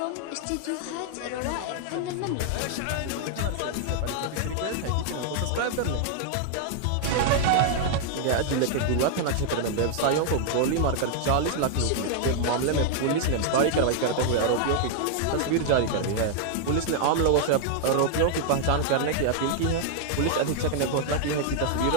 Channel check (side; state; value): both; different; correlation 0.00